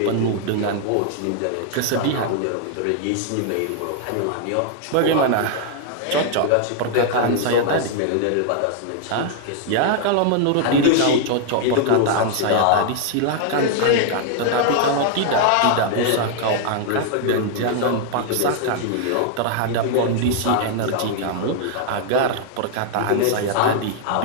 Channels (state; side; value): different; both; correlation 0.00